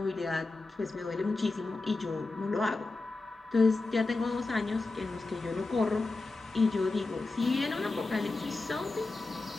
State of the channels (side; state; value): right; quieter; 3.4 dB